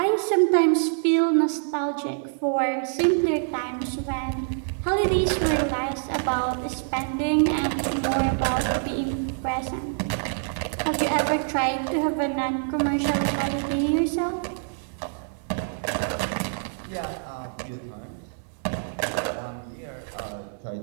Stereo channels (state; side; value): silent; left; digital silence